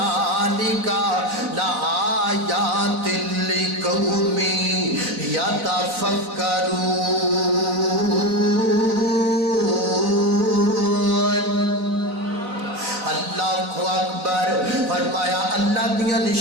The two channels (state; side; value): late; left; 3.9 ms